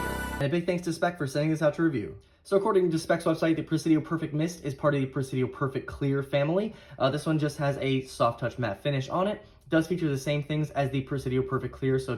And a big thanks to Speck for sending this out to review. So according to Speck's website, the Presidio Perfect Mist is part of the Presidio Perfect Clear family. This one just has a soft touch matte finish on it. It does feature the same things as the Presidio Perfect Clear, so it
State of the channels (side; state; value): both; identical; correlation 1.00